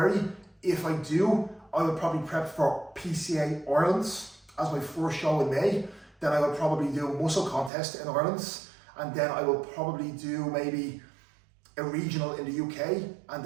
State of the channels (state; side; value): drops out; left; at 7.7 s